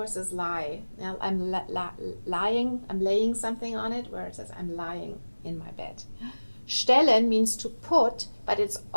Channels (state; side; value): inverted; both; correlation -1.00